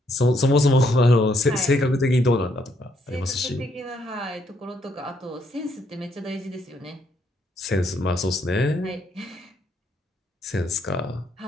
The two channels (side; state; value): both; normal; correlation 0.72